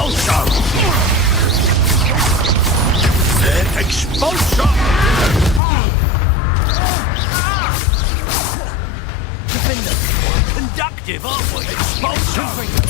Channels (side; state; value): right; drops out; at 5.6 s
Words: Expulso! Defender! Quite conductive, aren't we? Expulso!